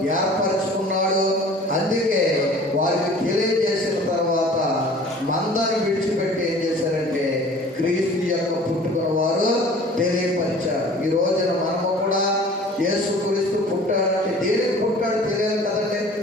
ఏర్పరచుకున్నాడు. అందుకే వారికి తెలియజేసిన తర్వాత మందను విడిచిపెట్టి ఏం చేశారంటే క్రీస్తు యొక్క పుట్టుకను వారు తెలియపరిచారు. ఈ రోజున మనము కూడా యేసుక్రీస్తు పుట్టాడంటే దేనికి పుట్టాడు తెలియాలి కదండి.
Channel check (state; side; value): normal; both; correlation 0.47